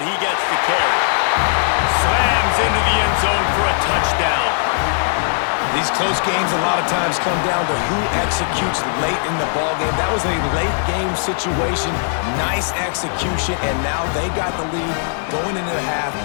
he gets the carry. Slams into the end zone for a touchdown. These close games a lot of times come down to who executes late in the ballgame. That was a late game situation, nice execution, and now they got the lead going into the half,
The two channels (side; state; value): right; silent; digital silence